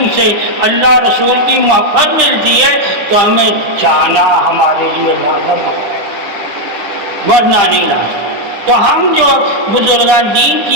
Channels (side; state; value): left; late; 9.9 ms